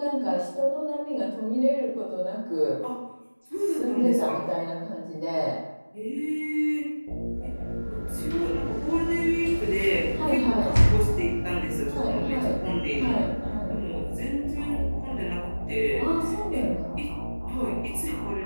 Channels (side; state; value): both; inverted; correlation -1.00